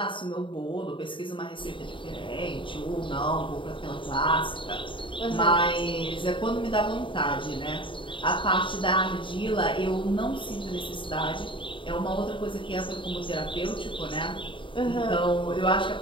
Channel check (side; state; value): right; late; 0.24 ms